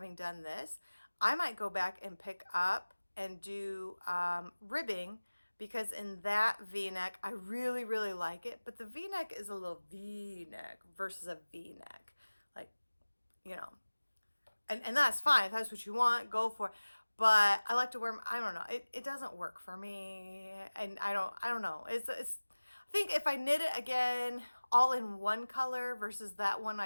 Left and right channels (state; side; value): inverted; both; correlation -1.00